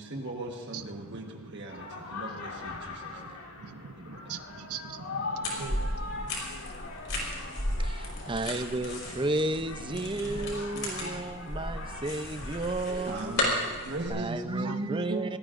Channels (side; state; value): both; normal; correlation 0.43